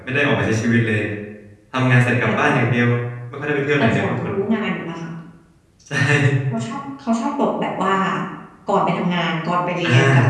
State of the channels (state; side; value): identical; both; correlation 1.00